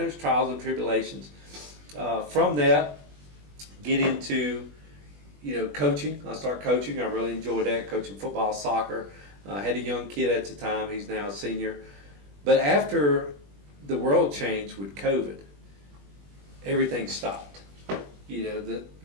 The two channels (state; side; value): late; left; 20 ms